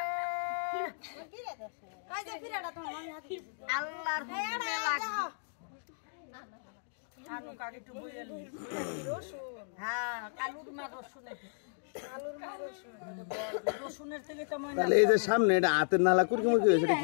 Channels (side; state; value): right; silent; digital silence